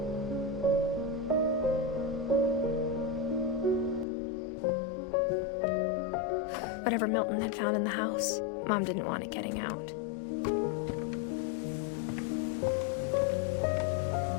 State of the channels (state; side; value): drops out; right; at 4.0 s